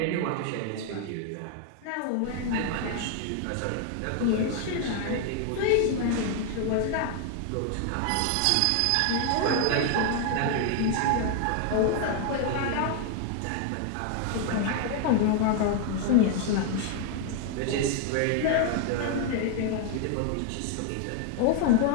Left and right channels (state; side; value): different; both; correlation 0.00